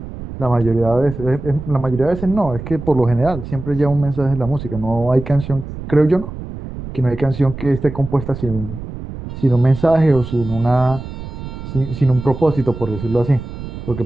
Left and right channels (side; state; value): right; noise; rumble, 10 dB below the sound